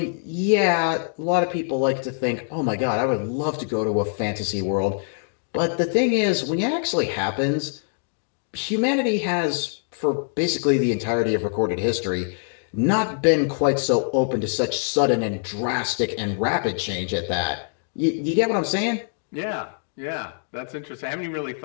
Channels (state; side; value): silent; right; digital silence